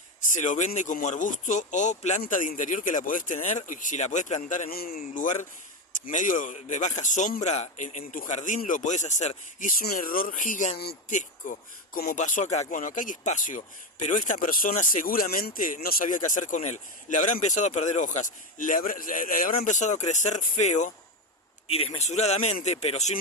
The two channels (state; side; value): normal; both; correlation 0.14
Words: se lo vende como arbusto o planta de interior, que la podés tener, y si la podés plantar en un lugar medio de baja sombra, en tu jardín lo podés hacer. Y es un error gigantesco, como pasó acá. Bueno, acá hay espacio, pero esta persona seguramente no sabía qué hacer con él. Le habrá empezado a perder hojas, le habrá empezado a crecer feo y desmesuradamente, pero sin